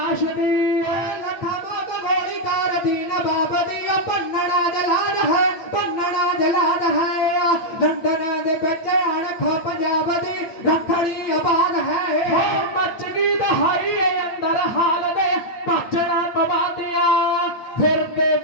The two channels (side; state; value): right; late; 8.7 ms